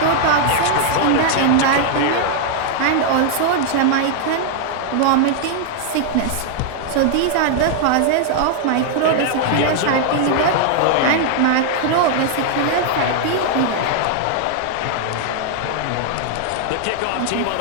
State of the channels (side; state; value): both; different; correlation -0.01